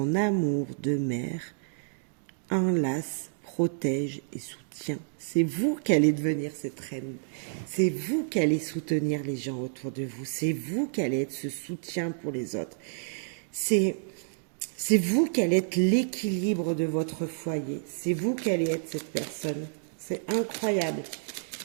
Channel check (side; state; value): left; silent; digital silence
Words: amour de mère enlace, protège et soutient. C'est vous qui allez devenir cette reine. C'est vous qui allez soutenir les gens autour de vous. C'est vous qui allez être ce soutien pour les autres. C'est vous qui allez être l'équilibre de votre foyer. C'est vous qui allez être cette personne. C'est incroyable.